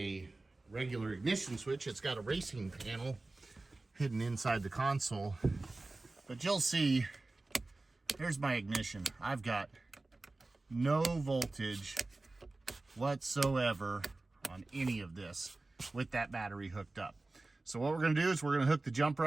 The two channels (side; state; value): left; quieter; 3.1 dB